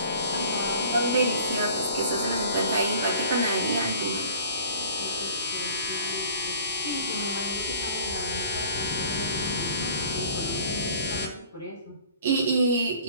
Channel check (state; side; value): inverted; both; correlation -0.50